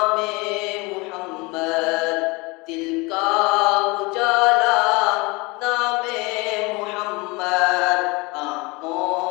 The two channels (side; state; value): right; quieter; 25.7 dB